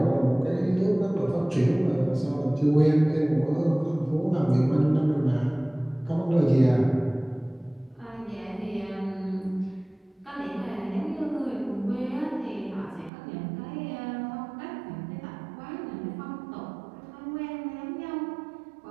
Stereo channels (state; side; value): drops out; left; at 13.1 s